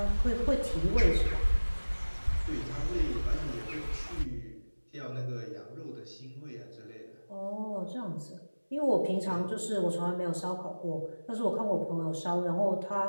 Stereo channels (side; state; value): both; inverted; correlation -1.00